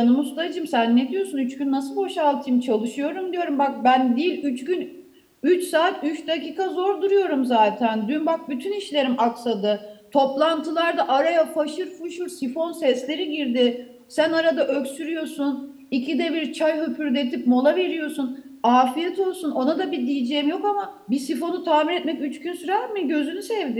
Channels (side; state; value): both; identical; correlation 1.00